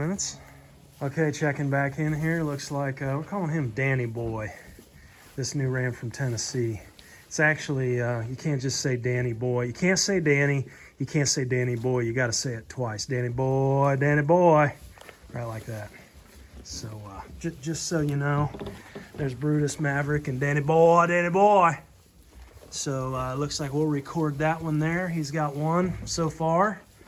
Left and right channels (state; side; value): identical; both; correlation 1.00